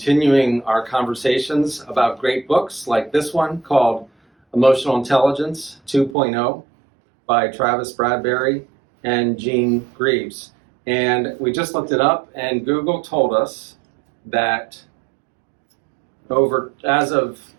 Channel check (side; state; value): left; drops out; at 6.2 s